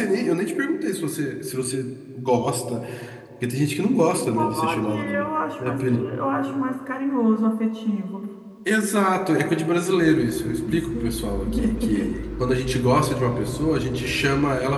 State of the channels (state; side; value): identical; both; correlation 1.00